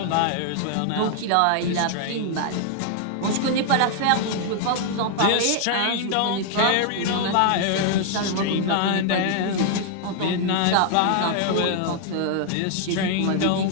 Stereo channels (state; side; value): different; both; correlation 0.00